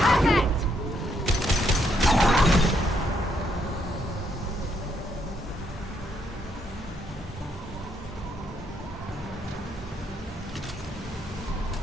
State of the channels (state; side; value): normal; both; correlation 0.74